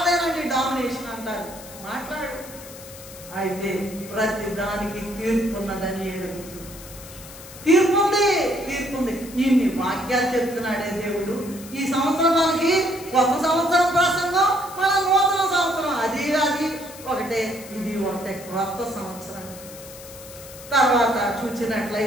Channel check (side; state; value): left; noise; hiss, 16 dB below the sound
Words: డామినేషన్ అంటారు. మాట్లాడు. అయితే ప్రతి దానికి తీర్పు ఉన్నదని ఎరుగుతుంది. తీర్పు ఉంది. ఇన్ని వాక్యాలు చెప్తున్నాడే దేవుడు. ఈ సంవత్సరం మనకి కొత్త సంవత్సరం ప్రసంగం, మన నూతన సంవత్సరం అది ఒకటే, ఇది ఒకటే క్రొత్త సంవత్సరం. తర్వాత